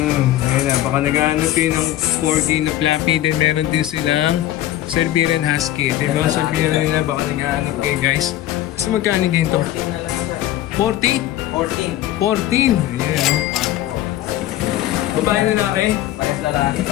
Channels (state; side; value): quieter; right; 13.7 dB